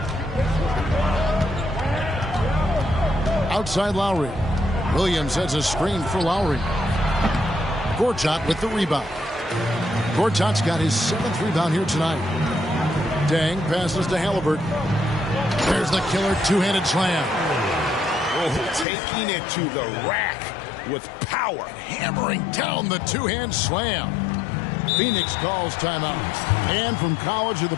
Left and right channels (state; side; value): drops out; right; at 18.9 s